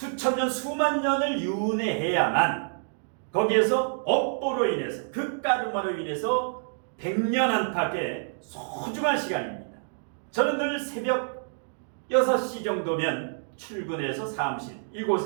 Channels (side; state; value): left; silent; digital silence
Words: 년 수만 년을 윤회해야만 거기에서 업보로 인해서 그 까르마로 인해서 100년 안팎의 소중한 시간입니다. 저는 늘 새벽 6시 정도면 출근해서 사무실